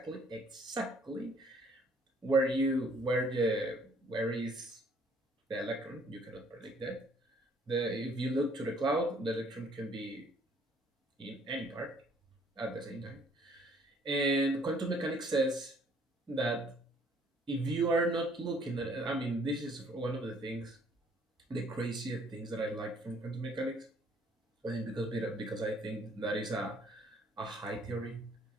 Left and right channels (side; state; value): both; normal; correlation 0.61